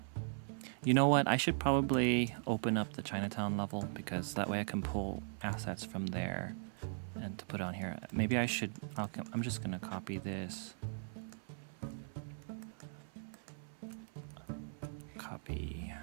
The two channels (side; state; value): left; silent; 52 dB below the other